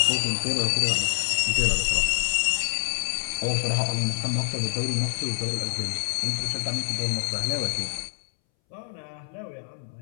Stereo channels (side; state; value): right; silent; 61 dB below the other